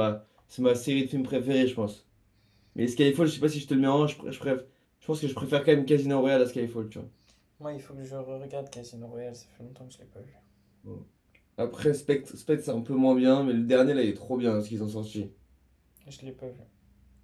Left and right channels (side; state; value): both; identical; correlation 1.00